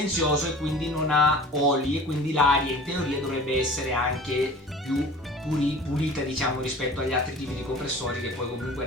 e quindi non ha oli e quindi l'aria in teoria dovrebbe essere anche più pulita diciamo rispetto agli altri tipi di compressori che poi comunque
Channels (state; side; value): normal; both; correlation 0.42